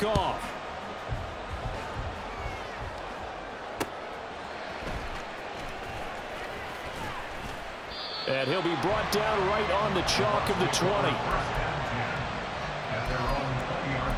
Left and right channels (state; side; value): identical; both; correlation 1.00